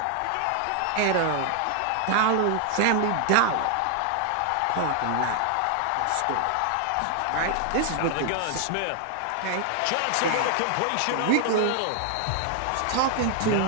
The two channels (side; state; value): both; different; correlation 0.00